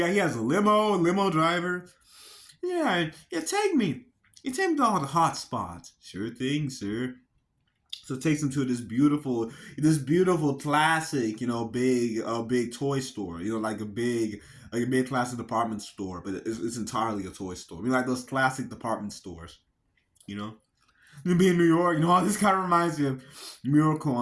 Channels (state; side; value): identical; both; correlation 1.00